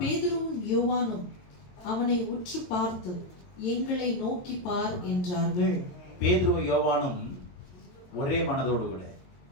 யோவானும் அவனை உற்று பார்த்து, எங்களை நோக்கி பார் என்றார்கள். பேதுருவும் யோவானும் ஒரே மனதோடு கூட,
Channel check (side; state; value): right; late; 22 ms